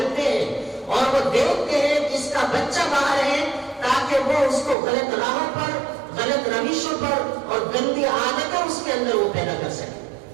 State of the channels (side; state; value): left; drops out; at 4.8 s